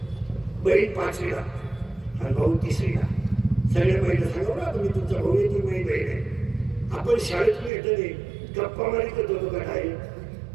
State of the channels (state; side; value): drops out; left; at 7.7 s